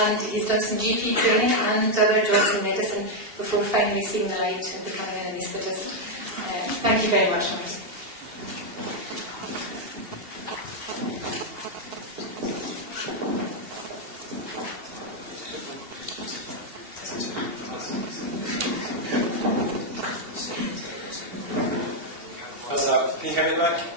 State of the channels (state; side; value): late; left; 2.8 ms